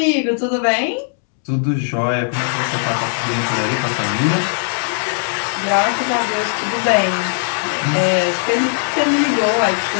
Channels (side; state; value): right; silent; 67 dB below the other